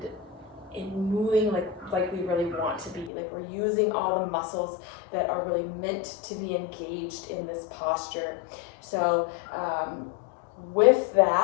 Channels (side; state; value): right; drops out; at 3.1 s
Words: moving like we really want to be. Like we're using all the muscles that are really meant to be engaged in this posture. So with